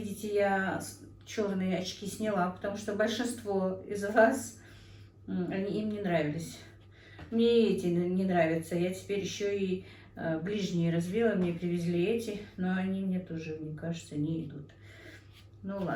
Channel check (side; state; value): both; identical; correlation 1.00